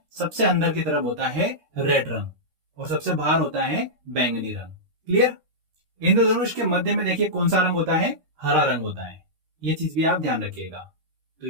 सबसे अंदर की तरफ होता है रेड रंग और सबसे बाहर होता है बैंगनी रंग। क्लियर। इंद्रधनुष के मध्य में देखिए कौन सा रंग होता है, हरा रंग होता है। ये चीज भी आप ध्यान रखिएगा। तो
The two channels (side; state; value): left; late; 13 ms